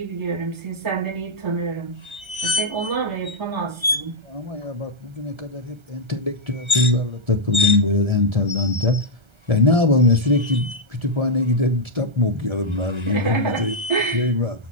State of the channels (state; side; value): late; left; 1.3 ms